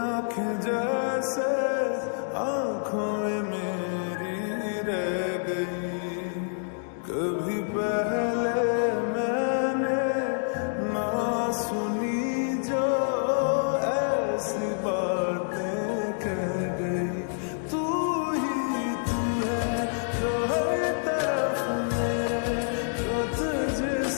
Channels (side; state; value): right; silent; digital silence